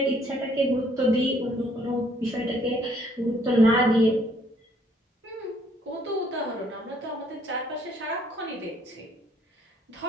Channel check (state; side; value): normal; both; correlation 0.65